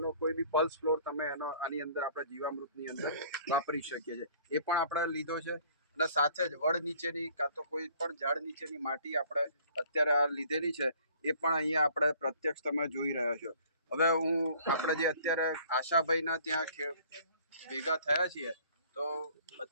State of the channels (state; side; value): inverted; both; correlation -0.54